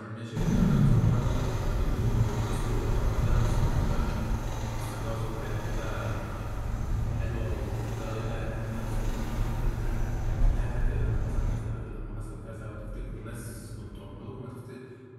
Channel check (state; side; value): identical; both; correlation 1.00